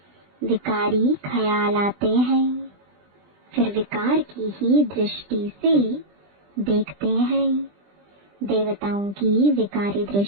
विकारी ख्याल आते हैं। फिर विकार की ही दृष्टि से देखते हैं। देवताओं की विकारी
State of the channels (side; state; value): left; late; 20 ms